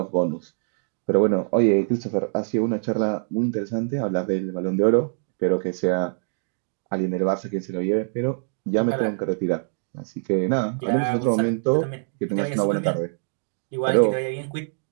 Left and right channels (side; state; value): left; silent; digital silence